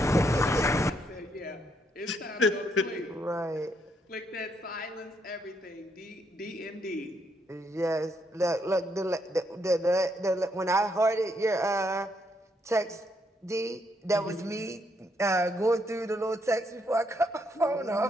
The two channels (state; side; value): normal; both; correlation 0.75